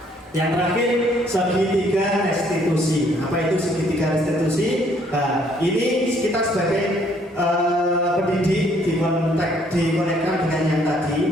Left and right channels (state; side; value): normal; both; correlation 0.64